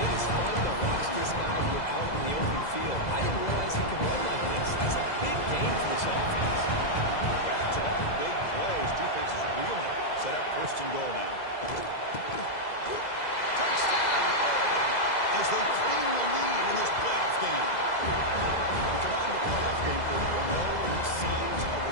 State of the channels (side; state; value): right; late; 2.0 ms